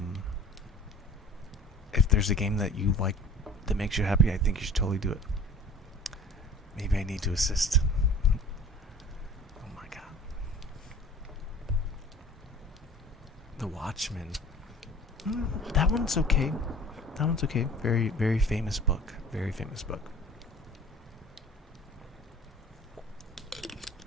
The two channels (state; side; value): normal; both; correlation 0.45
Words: if there's a game that you like that makes you happy, I think you should totally do it. Maybe I need to assist. Oh my god. The Watchmen. That one's okay. That one's okay. Very, very famous book. Very famous book.